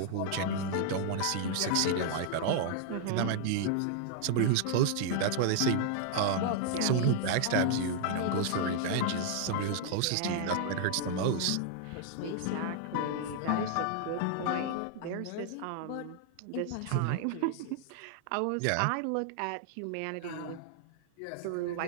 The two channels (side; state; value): both; different; correlation -0.01